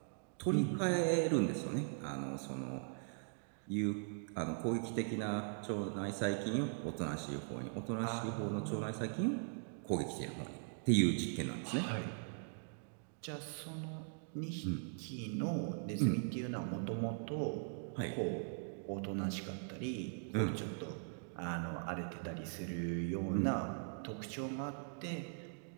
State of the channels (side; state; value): left; silent; digital silence